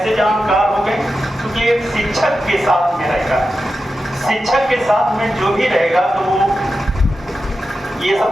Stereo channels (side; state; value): both; normal; correlation 0.91